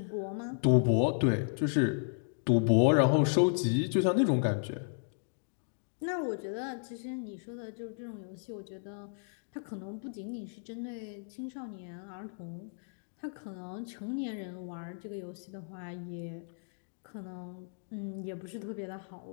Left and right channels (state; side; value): silent; right; digital silence